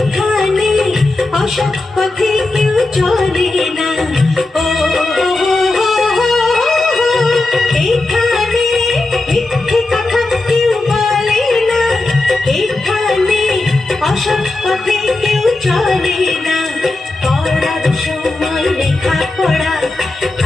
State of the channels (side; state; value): right; quieter; 3.0 dB